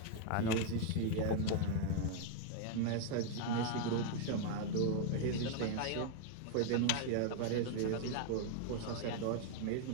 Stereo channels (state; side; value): different; both; correlation 0.00